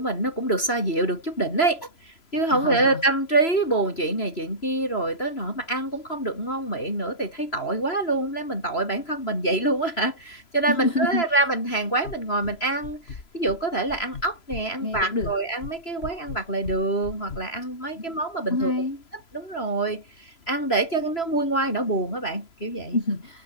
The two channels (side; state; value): right; late; 3.0 ms